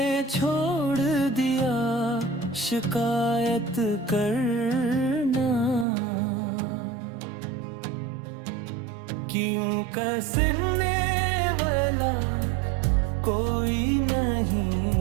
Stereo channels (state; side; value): drops out; left; at 5.9 s